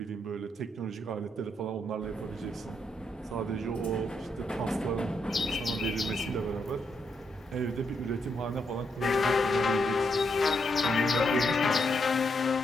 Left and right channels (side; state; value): both; normal; correlation 0.79